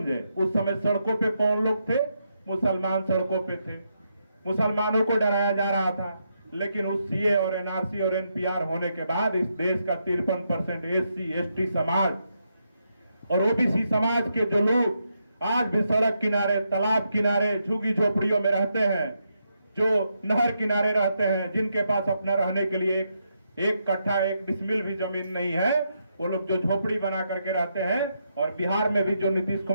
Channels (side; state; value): both; inverted; correlation -0.81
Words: उस समय सड़कों पे कौन लोग थे? मुसलमान सड़कों पे थे, मुसलमानों को डराया जा रहा था। लेकिन उस सीए और एनआरसी और एनपीआर होने के बाद इस देश का 53% एससी एसटी समाज और ओबीसी समाज के जो लोग आज भी सड़क किनारे, तालाब किनारे, झुग्गी झोपड़ियों में रहते हैं, जो नहर किनारे रहते हैं, जिनके पास अपना रहने के लिए एक कट्ठा एक डिसमिल भी जमीन नहीं है, वो लोग जो झोपड़ी बना करके रहते हैं। और बिहार में भी जो नीतीश